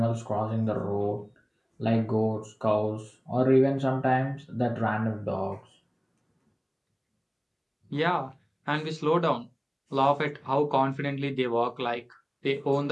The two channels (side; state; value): both; identical; correlation 1.00